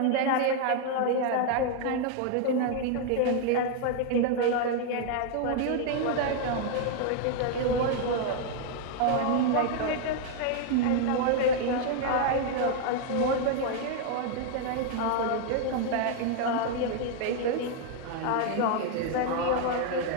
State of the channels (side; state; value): both; different; correlation 0.00